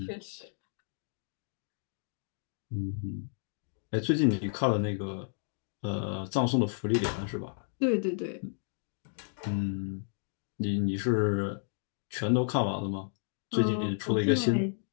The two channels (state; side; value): silent; right; digital silence